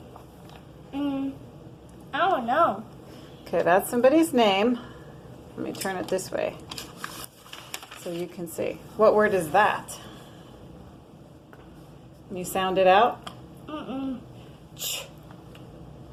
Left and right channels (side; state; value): both; identical; correlation 1.00